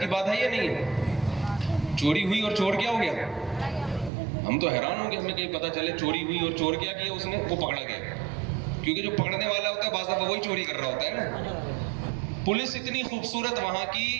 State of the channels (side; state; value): left; drops out; at 4.1 s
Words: بات ہے یا نہیں ہے؟ چوری ہوئی اور چور کیا ہو گیا؟ ہم تو حیران ہوں گے، ہمیں کہیں پتہ چلے چوری ہوئی اور چور کیا کیا اس نے، وہ پکڑا گیا. کیونکہ جو پکڑنے والا ہوتا ہے بعض دفعہ وہی چوری کر رہا ہوتا ہے نا. پولیس اتنی خوبصورت وہاں کی،